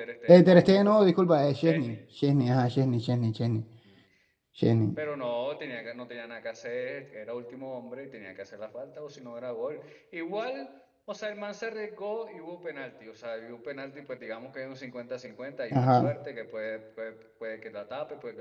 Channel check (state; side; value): identical; both; correlation 1.00